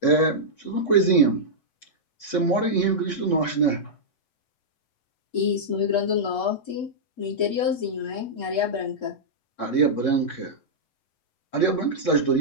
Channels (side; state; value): right; late; 8.0 ms